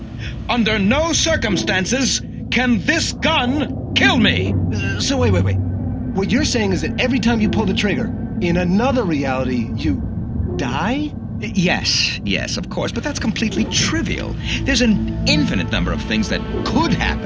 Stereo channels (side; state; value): both; identical; correlation 1.00